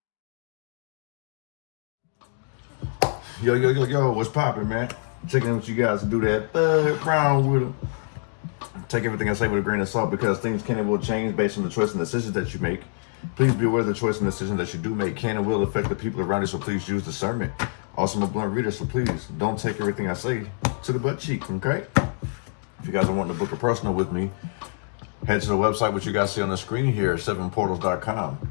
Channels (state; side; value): silent; right; digital silence